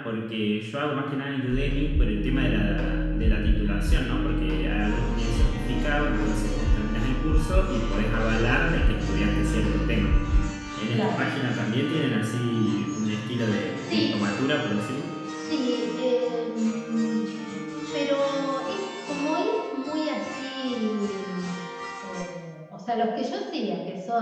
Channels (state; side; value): identical; both; correlation 1.00